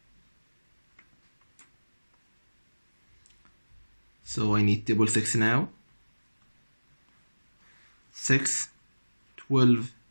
So I need table 6 now. 6, 12,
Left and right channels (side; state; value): both; inverted; correlation -1.00